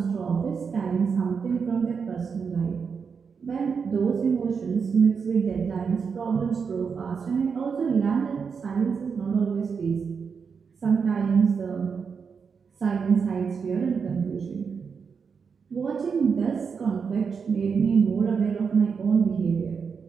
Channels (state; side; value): quieter; left; 5.9 dB